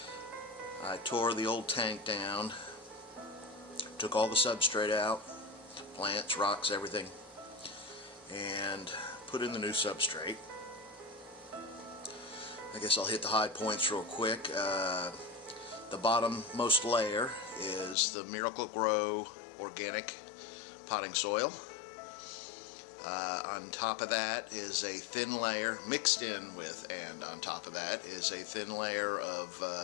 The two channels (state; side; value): drops out; right; at 17.9 s